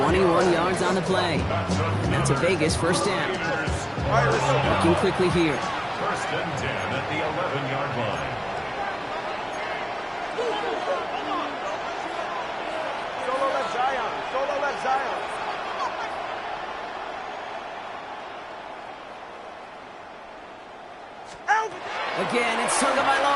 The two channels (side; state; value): both; identical; correlation 1.00